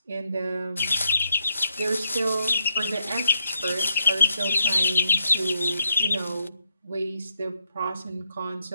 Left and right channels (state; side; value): inverted; both; correlation -0.78